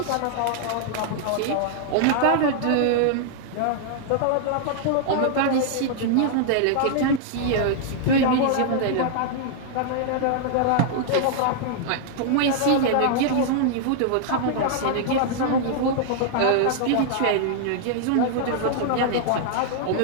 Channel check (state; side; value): different; both; correlation -0.01